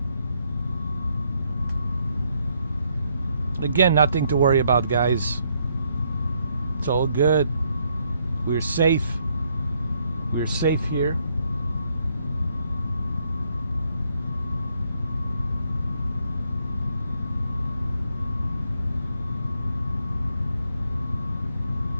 Again, nothing to worry about, guys. It's all good. We're safe. We're safe here.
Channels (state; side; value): inverted; both; correlation -0.73